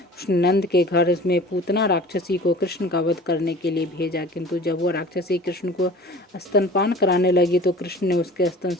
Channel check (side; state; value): both; normal; correlation 0.43